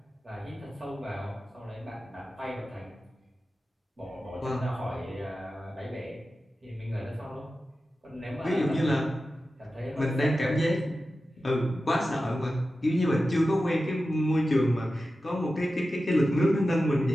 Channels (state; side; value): normal; both; correlation 0.93